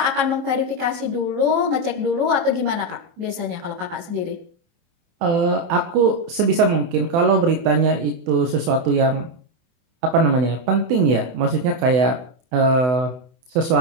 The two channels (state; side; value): late; left; 24 ms